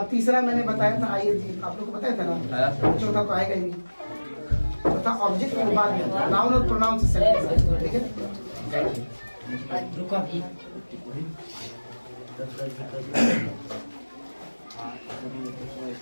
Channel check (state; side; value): inverted; both; correlation -1.00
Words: तीसरा मैंने बताया था, आइए जी आप लोग को बताया था ना, चौथा तो आएगा ही नहीं। चौथा ऑब्जेक्ट के बाद में नाउन और प्रोनाउन से सेट, ठीक है।